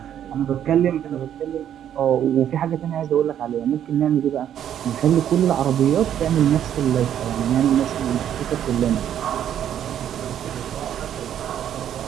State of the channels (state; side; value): quieter; left; 10.1 dB